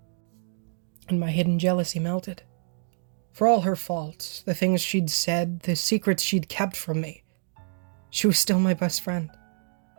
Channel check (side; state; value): left; silent; digital silence